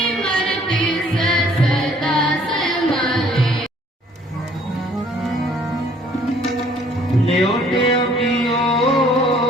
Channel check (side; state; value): both; normal; correlation 0.59